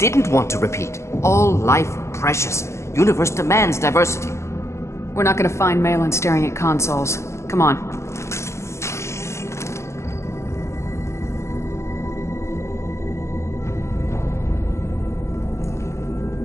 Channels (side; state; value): right; late; 0.13 ms